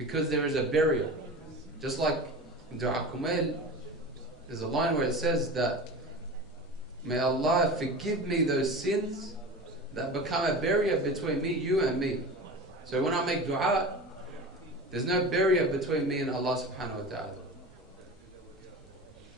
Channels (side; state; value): both; normal; correlation 0.32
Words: there is a barrier. Just like in Dua Kumail, there's a line where it says that, may Allah forgive me those sins that become a barrier between me, you and me. So when I make dua, there's no barrier between me and Allah subhanahu wa ta'ala.